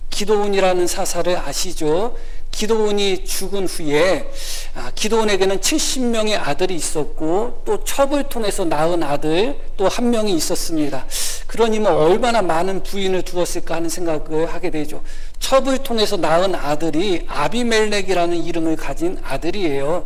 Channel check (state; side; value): identical; both; correlation 1.00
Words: 기드온이라는 사사를 아시죠? 기드온이 죽은 후에 기드온에게는 70명의 아들이 있었고 또 첩을 통해서 낳은 아들 또 한 명이 있었습니다. 그러니 얼마나 많은 부인을 두었을까 하는 생각을 하게 되죠. 첩을 통해서 낳은 아들이 아비멜렉이라는 이름을 가진